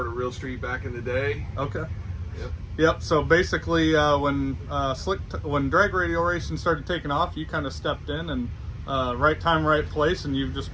Real Street back in the day. Okay. Yep. So basically, when drag radial racing started taking off, you kind of stepped in and right time, right place, and you've just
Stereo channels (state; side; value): identical; both; correlation 1.00